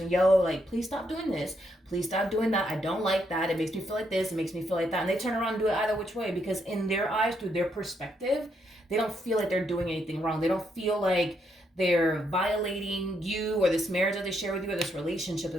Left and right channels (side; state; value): both; normal; correlation 0.77